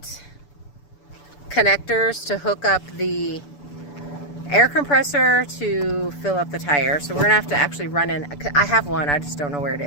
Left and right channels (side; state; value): right; late; 6.9 ms